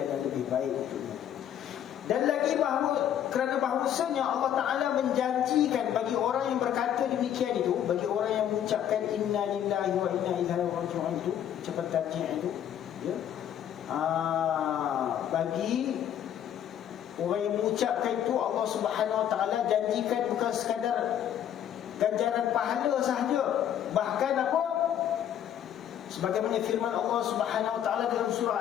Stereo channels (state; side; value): quieter; right; 10.1 dB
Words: yang lebih baik untuknya. Dan lagi bahawa kerana bahawasanya Allah Ta'ala menjanjikan bagi orang yang berkata demikian itu, bagi orang yang mengucapkan inna lillahi wa inna ilaihi raji'un itu, ucapan tarjih itu, ya, bagi orang yang mengucapkan itu, Allah Subhanahu Wa Ta'ala janjikan bukan sekadar ganjaran pahala sahaja, bahkan apa? Sebagaimana firman Allah Subhanahu Wa Ta'ala dalam